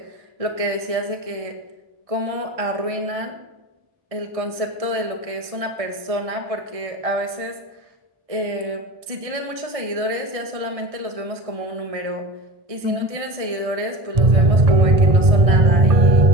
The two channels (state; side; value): late; left; 1.6 ms